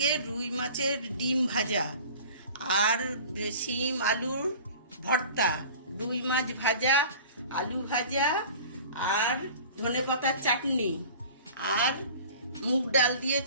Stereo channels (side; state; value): both; inverted; correlation -0.43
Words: রুই মাছের ডিম ভাজা আর শিম আলুর ভর্তা, রুই মাছ ভাজা, আলু ভাজা আর ধনেপাতার চাটনি আর মুগ ডাল দিয়ে